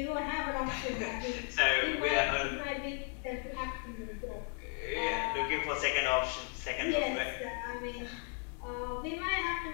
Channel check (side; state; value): right; quieter; 39.8 dB